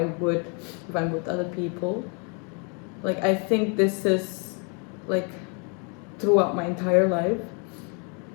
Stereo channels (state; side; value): quieter; right; 36.4 dB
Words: would if I'm with other people. Like, I think this is, like, throughout my entire life,